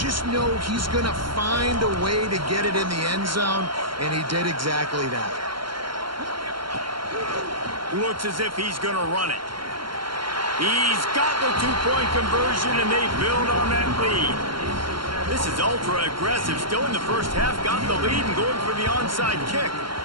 know he's going to find a way to get it in the end zone, and he did exactly that. Looks as if he's going to run it. He's got the 2-point conversion, and they build on that lead. This is ultra aggressive. Still in the 1st half, got the lead and going for the onside kick.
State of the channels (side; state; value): left; late; 0.73 ms